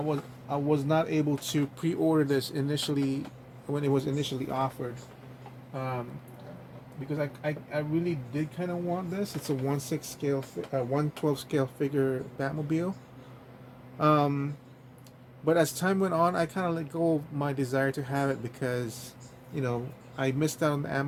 not able to pre-order this initially when it was initially offered, because I really did kind of want this. It's a 1/6 scale, 1/12 scale figure Batmobile. But as time went on, I kind of let go of my desire to have it because, I missed out on the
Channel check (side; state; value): both; identical; correlation 1.00